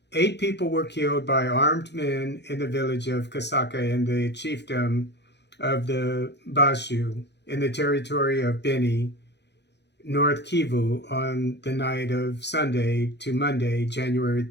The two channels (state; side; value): late; right; 0.50 ms